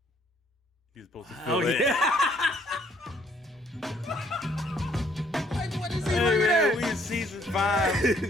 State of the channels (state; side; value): normal; both; correlation 0.66